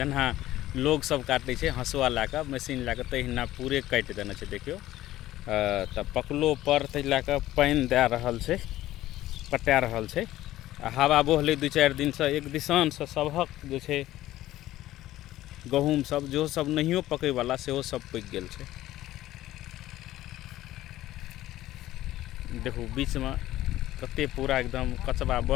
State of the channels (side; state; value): right; quieter; 14.9 dB